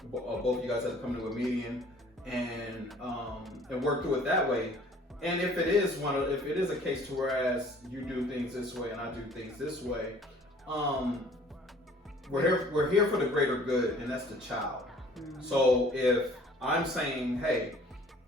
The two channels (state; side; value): normal; both; correlation 0.53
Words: Both of you guys have to come to a median and work through it that way. And if it is a case to whereas you do things this way and I do things this way, we're here for the greater good, and that's the child. So if I'm saying, hey,